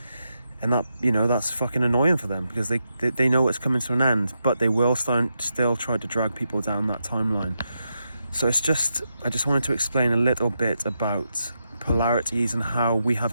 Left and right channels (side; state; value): both; inverted; correlation -0.85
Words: And that, you know, that's fucking annoying for them, because they know it's coming to an end, but they will still try to drag people down that timeline. So it's just, I just wanted to explain a little bit about polarities and how we